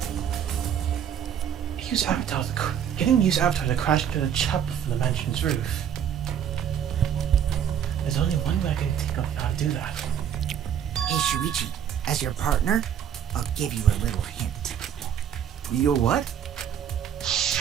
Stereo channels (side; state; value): left; quieter; 9.0 dB